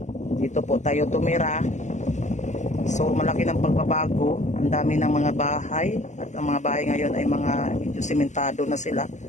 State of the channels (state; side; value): late; right; 0.34 ms